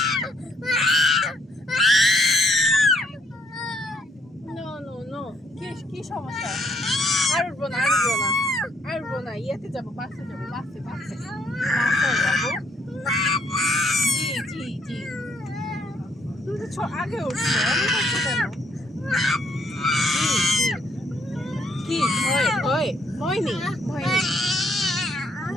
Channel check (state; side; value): normal; both; correlation 0.69